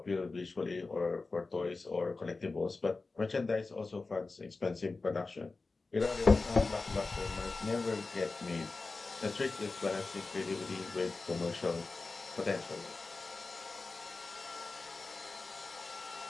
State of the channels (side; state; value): right; quieter; 3.7 dB